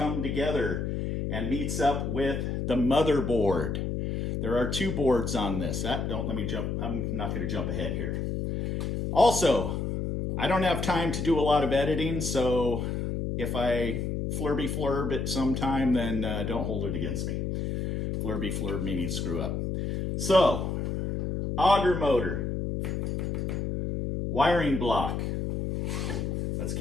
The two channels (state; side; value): noise; left; hum, 2 dB below the sound